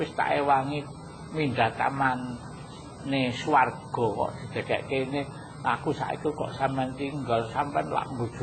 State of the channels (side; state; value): both; identical; correlation 1.00